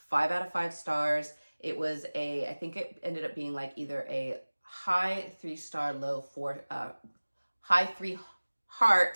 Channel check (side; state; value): both; inverted; correlation -1.00